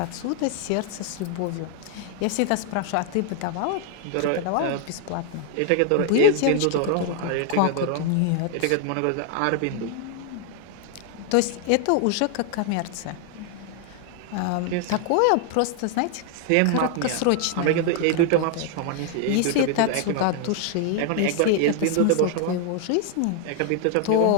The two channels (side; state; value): both; different; correlation 0.00